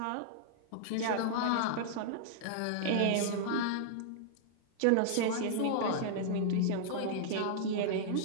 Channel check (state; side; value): different; both; correlation -0.01